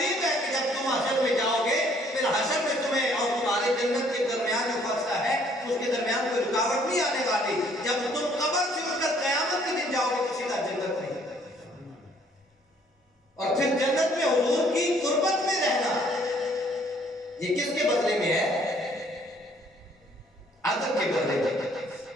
ہے کہ جب تم حشر میں جاؤ گے, پھر حشر میں تمہیں اور تمہارے جنت کے درمیان جو فاصلہ ہے اس کے درمیان کوئی رکاوٹ نہیں آنے والی. جب تم قبر سے اٹھ کر قیامت کے دن جاؤ گے تو سیدھا جنت میں, اور پھر جنت میں حضور کی قربت میں رہنا, یہ کس کے بدلے میں ہے؟ ادب کے بدلے میں.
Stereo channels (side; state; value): both; normal; correlation 0.62